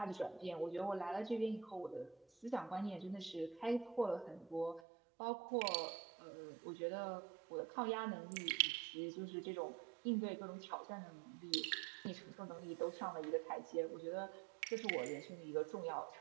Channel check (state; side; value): drops out; left; at 4.8 s